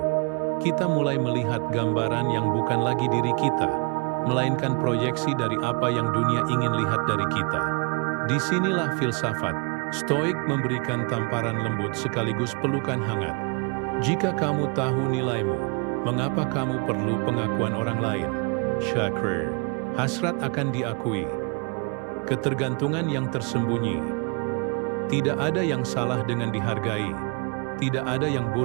kita mulai melihat gambaran yang bukan lagi diri kita, melainkan proyeksi dari apa yang dunia ingin lihat dari kita. Disinilah filsafat Stoik memberikan tamparan lembut sekaligus pelukan hangat. Jika kamu tahu nilaimu, mengapa kamu perlu pengakuan orang lain? Syakrir, hasrat akan diakui. Ketergantungan yang tersembunyi. Tidak ada yang salah dengan dihargai. Tidak ada yang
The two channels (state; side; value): quieter; left; 33.9 dB